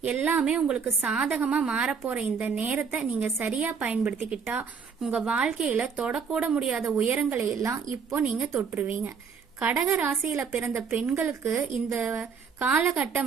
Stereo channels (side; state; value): left; quieter; 6.1 dB